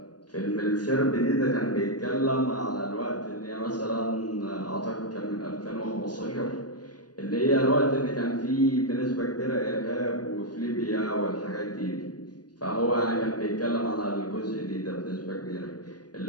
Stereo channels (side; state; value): right; late; 0.69 ms